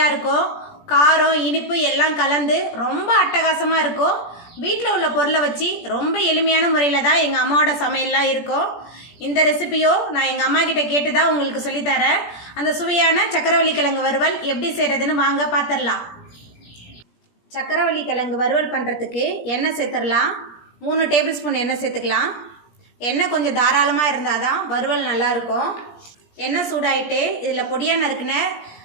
இருக்கும். காரம் இனிப்பு எல்லாம் கலந்து ரொம்ப அட்டகாசமாக இருக்கும். வீட்டில் உள்ள பொருளை வச்சு ரொம்ப எளிமையான முறையில் தான் எங்கள் அம்மாவோட சமையல்லாம் இருக்கும். இந்த ரெசிபியோ நான் எங்கள் அம்மா கிட்ட கேட்டு தான் உங்களுக்கு சொல்லித்தரேன். அந்த சுவையான சக்கரவள்ளி கிழங்கு வறுவல் எப்படி செய்கிறதுன்னு வாங்க பார்த்துடலாம். சக்கரவள்ளி கிழங்கு வறுவல் பண்ணுறதுக்கு எண்ணெய் சேர்த்துடலாம். 3 டேபிள் ஸ்பூன் எண்ணெய் சேர்த்துக்கலாம். எண்ணெய் கொஞ்சம் தாராளமாக இருந்தால் தான் வறுவல் நல்லாயிருக்கும். எண்ணெய் சூடாயிட்டு இதில் பொடியாக நறுக்குன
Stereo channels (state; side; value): late; right; 17 ms